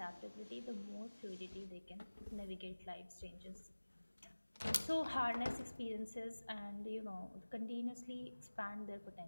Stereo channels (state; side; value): inverted; both; correlation -1.00